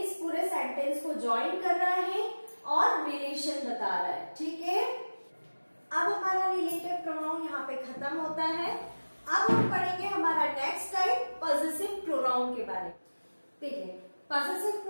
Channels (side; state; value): both; inverted; correlation -1.00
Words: पूरे सेंटेंस को ज्वाइन कर रहा है और रिलेशन बता रहा है। ठीक है, अब हमारा रिलेटिव प्रोनाउन यहाँ पे खत्म होता है। अब हम पढ़ेंगे हमारा नेक्स्ट टाइप पॉसेसिव प्रोनाउन के बारे में। देखिए पॉसेसिव